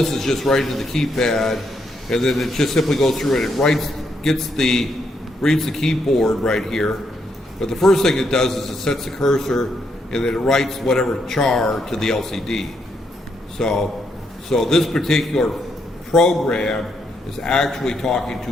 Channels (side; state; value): both; normal; correlation 0.77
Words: is just right into the keypad, and then it just simply goes through and it reads the keyboard right here. But the first thing it does is it sets the cursor, and then it writes whatever char to the LCD. So this particular program is actually talking